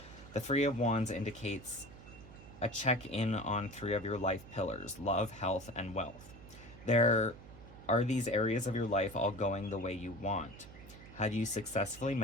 The Three of Wands indicates a check-in on three of your life pillars: love, health, and wealth. There are these areas of your life all going the way you want. Have you successfully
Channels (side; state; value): right; noise; hum, 18 dB below the sound